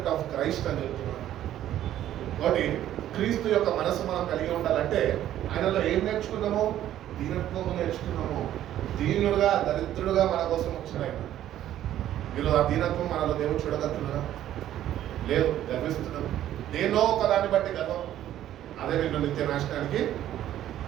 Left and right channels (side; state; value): left; quieter; 12.2 dB